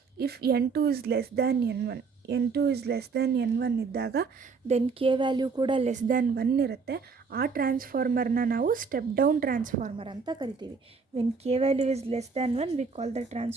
If N2 is less than N1 ಇದ್ದಾಗ ದೆನ್ ಕೆ ವ್ಯಾಲ್ಯೂ ಕೂಡ less than 1 ಇರುತ್ತೆ. ಆ ಟ್ರಾನ್ಸ್ಫಾರ್ಮರ್ನ ನಾವು ಸ್ಟೆಪ್ ಡೌನ್ ಟ್ರಾನ್ಸ್ಫಾರ್ಮರ್ ಅಂತ ಕರಿತೀವಿ. When K value is less than 1 we call the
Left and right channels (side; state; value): left; quieter; 5.0 dB